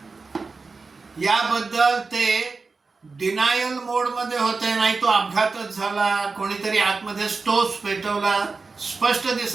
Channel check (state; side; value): quieter; left; 4.2 dB